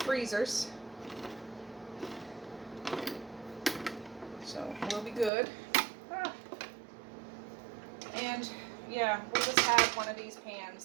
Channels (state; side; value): drops out; left; at 5.3 s